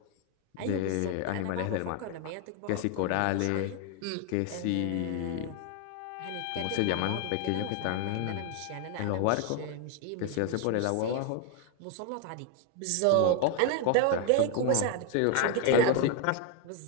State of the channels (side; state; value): both; different; correlation 0.01